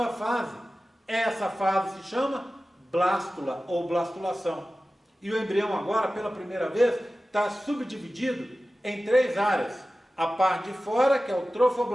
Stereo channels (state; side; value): normal; both; correlation 0.95